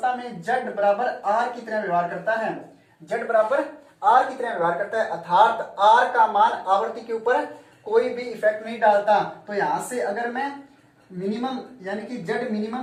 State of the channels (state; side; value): identical; both; correlation 1.00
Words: में जेड बराबर आर की तरह व्यवहार करता है, जेड बराबर आर की तरह व्यवहार करता है, अर्थात आर का मान आवर्ती के ऊपर कोई भी इफेक्ट नहीं डालता। तो यहां से अगर मैं मिनिमम यानी कि जेड